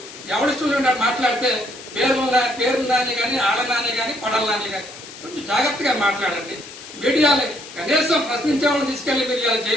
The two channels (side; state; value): left; noise; hiss, 15 dB below the sound